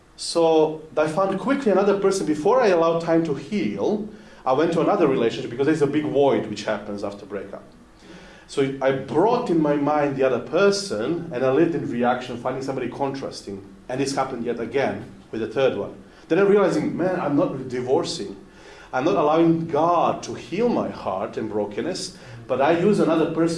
So I found quickly another person. Before I allowed time to heal, I went to another relationship because there's a big void which happens after breakup. So I brought in my mind the other person, and I lived in reaction, finding somebody contrasting. And this happened yet again with the third one. Then I'm realizing, man, I'm not divorcing. I'm not allowing God to heal my heart and brokenness, but I use another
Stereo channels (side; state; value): both; identical; correlation 1.00